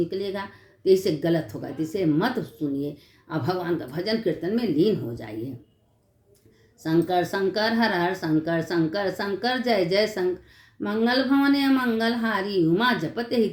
तो इससे गलत होगा। तो इसे मत सुनिए और भगवान का भजन कीर्तन में लीन हो जाइए। शंकर शंकर हर हर शंकर, शंकर शंकर जय जय शंकर। मंगल भवने मंगल हारी, उमा जपते ही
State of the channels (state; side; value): identical; both; correlation 1.00